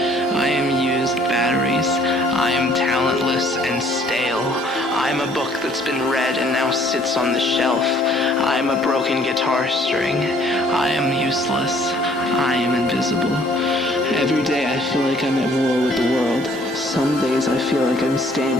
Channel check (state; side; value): normal; both; correlation 0.60